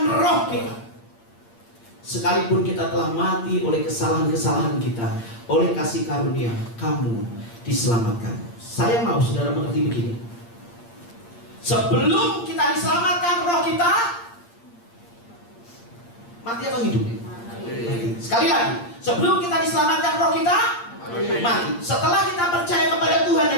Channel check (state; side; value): late; right; 8.6 ms